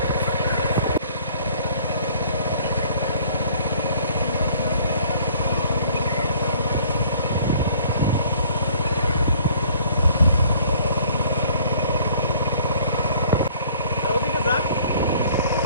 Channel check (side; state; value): both; inverted; correlation -0.56